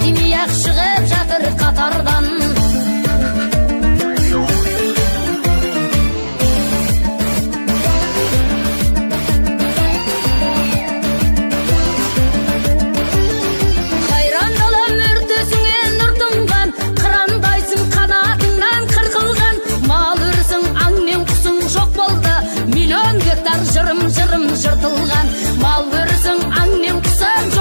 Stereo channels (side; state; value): both; inverted; correlation -1.00